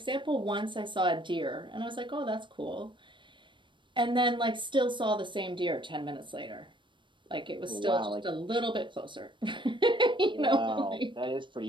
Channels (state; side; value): late; left; 0.23 ms